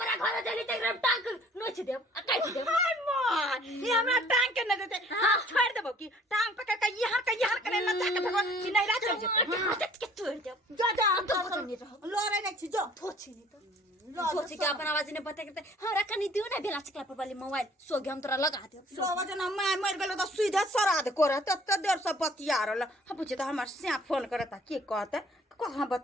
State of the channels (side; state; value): both; normal; correlation 0.55